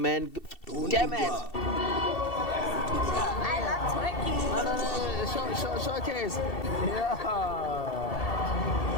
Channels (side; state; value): right; late; 2.7 ms